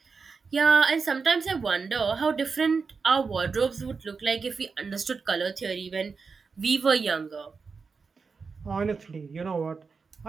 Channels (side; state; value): left; quieter; 5.0 dB